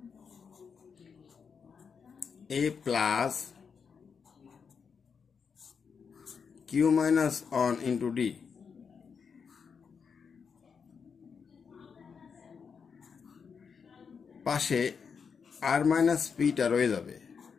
a plus q minus one into d পাশে আর মাইনাস পিটা রয়ে যাবে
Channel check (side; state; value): right; quieter; 6.1 dB